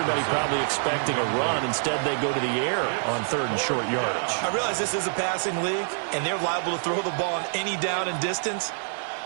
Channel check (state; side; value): silent; left; 57 dB below the other